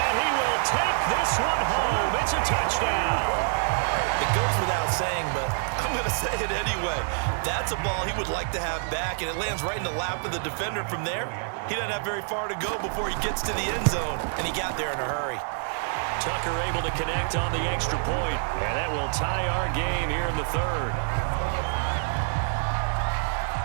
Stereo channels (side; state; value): left; silent; digital silence